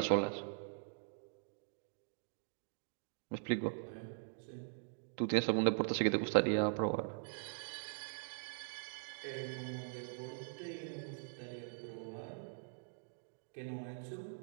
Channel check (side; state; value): left; silent; digital silence